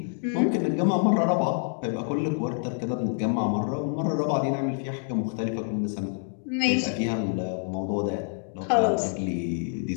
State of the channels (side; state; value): right; silent; digital silence